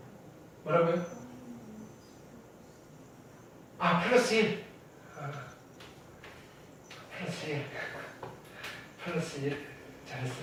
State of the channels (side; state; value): both; identical; correlation 1.00